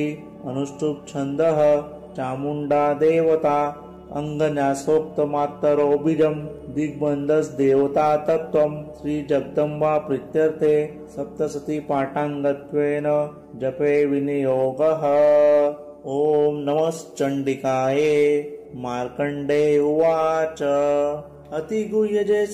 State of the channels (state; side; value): identical; both; correlation 1.00